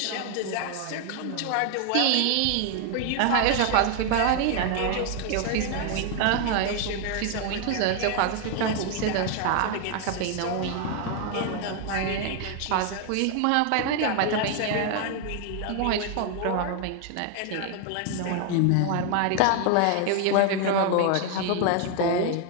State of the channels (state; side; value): different; both; correlation 0.01